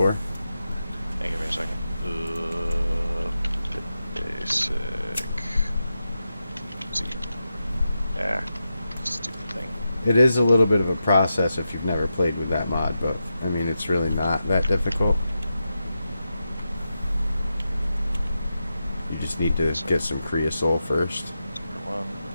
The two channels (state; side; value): inverted; both; correlation -0.89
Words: Hey, give me a second. Basic. See. Yeah. Stupid thing. It is a little bit of a process if you've never played with that mod, but I mean, it's really not that difficult. You just need to get some creosote first. Number 1.